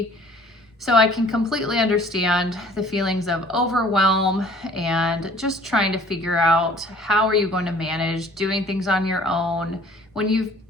So I can completely understand the feelings of overwhelm and just trying to figure out how are you going to manage doing things on your own when you've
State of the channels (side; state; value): both; normal; correlation 0.53